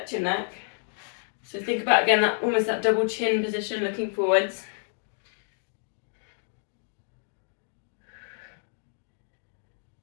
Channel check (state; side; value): silent; right; 59 dB below the other